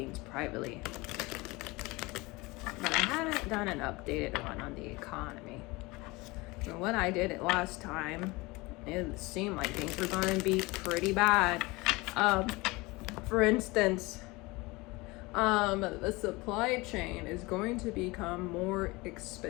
privately, but I haven't done an updated one on the economy. And when I did it last time, it seemed like things were going to be pretty bad. For instance, the supply chain is going to become more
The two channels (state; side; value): quieter; right; 23.3 dB